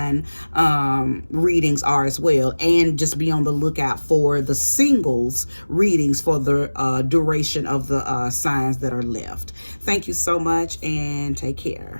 readings are as well. And just be on the lookout for the singles readings for the duration of the signs that are left. Thank you so much, and take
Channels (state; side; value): inverted; both; correlation -1.00